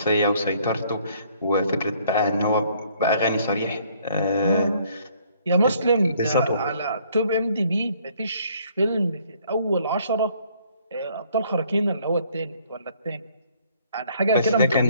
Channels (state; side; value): inverted; both; correlation -0.62